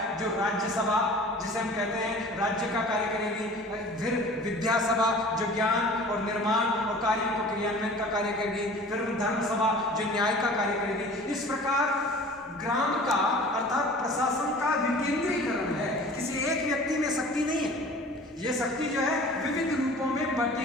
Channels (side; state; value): both; normal; correlation 0.44